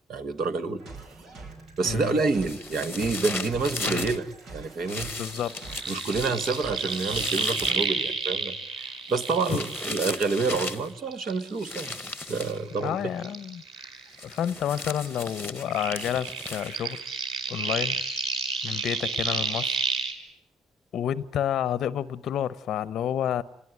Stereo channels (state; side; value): normal; both; correlation 0.54